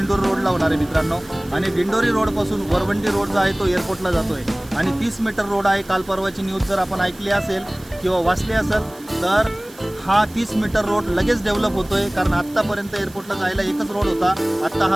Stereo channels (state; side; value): noise; right; hiss, 23 dB below the sound